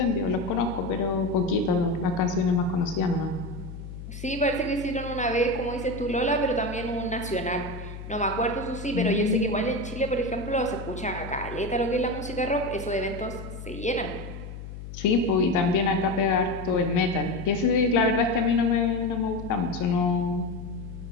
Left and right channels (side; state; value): left; noise; hum, 11 dB below the sound